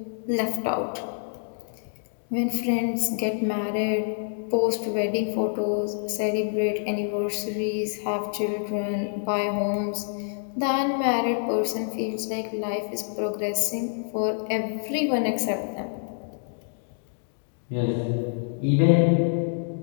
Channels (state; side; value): silent; right; digital silence